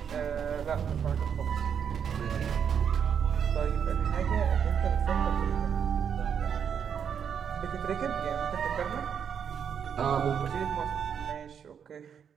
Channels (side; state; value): left; quieter; 7.7 dB